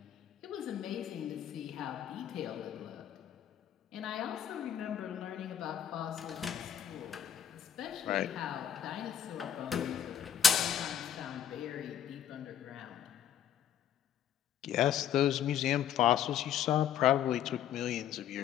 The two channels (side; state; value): right; quieter; 9.3 dB